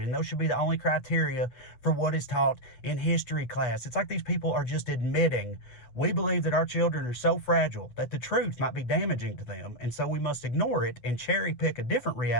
And those should be the only criteria for what is taught in history class. It's like these people are just admitting, we believe that our children are so fragile that the truth might be damaging to them, and so we must ignore it and cherry pick a different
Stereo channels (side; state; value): right; late; 8.6 ms